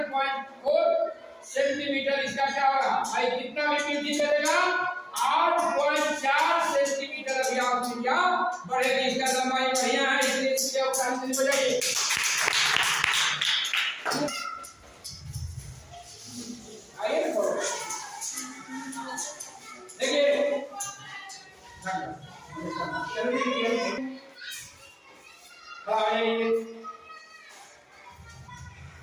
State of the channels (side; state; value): both; identical; correlation 1.00